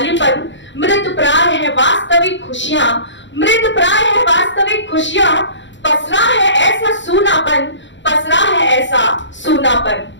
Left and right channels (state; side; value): late; right; 0.54 ms